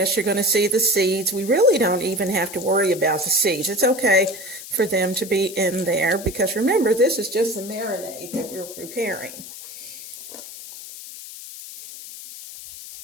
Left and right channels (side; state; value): left; noise; hiss, 13 dB below the sound